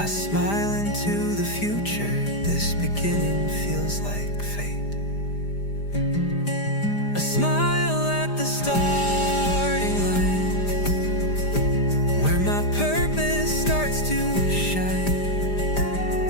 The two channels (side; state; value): right; late; 5.0 ms